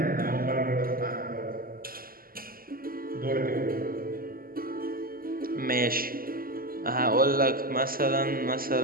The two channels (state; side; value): late; left; 0.42 ms